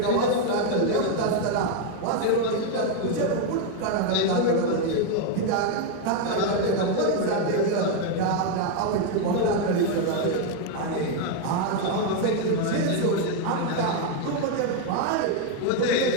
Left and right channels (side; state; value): both; different; correlation 0.01